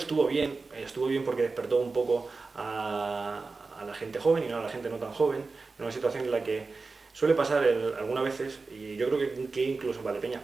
bien porque despertó un poco a la gente joven y no a la gente no tan joven, en una situación en la que suele pasar algunas veces, y yo creo que incluso en Valdepeñas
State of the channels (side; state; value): left; quieter; 4.0 dB